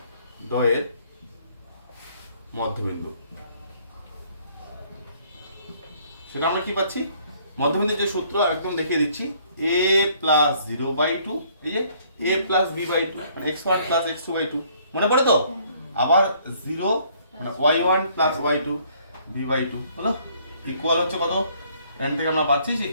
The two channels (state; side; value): inverted; both; correlation -0.62